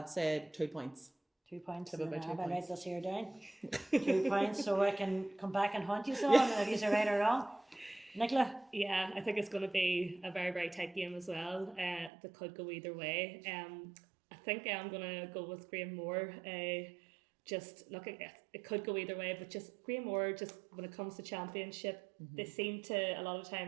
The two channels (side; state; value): left; drops out; at 12.1 s